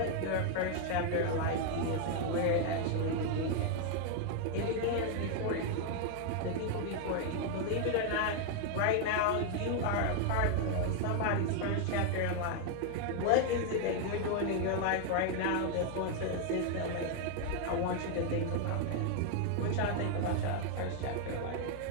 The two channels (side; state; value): both; different; correlation 0.00